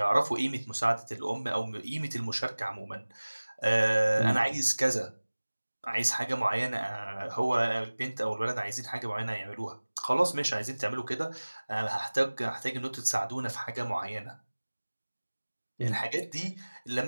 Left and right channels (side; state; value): both; inverted; correlation -1.00